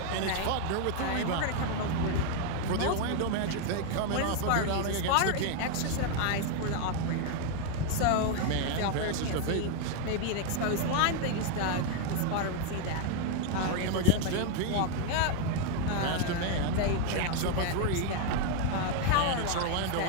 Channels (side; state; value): both; different; correlation 0.01